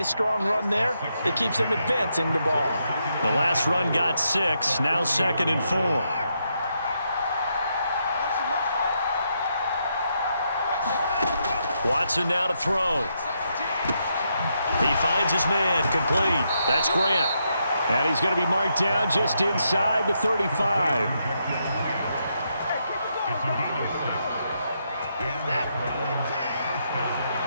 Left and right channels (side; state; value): both; inverted; correlation -0.80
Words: strong run there. It keeps them advancing the ball. The last run got 6. Now 2nd and 4. Watson now to throw. He finds his man, complete. That's Grant. And he's going to be marked down just inside the 35.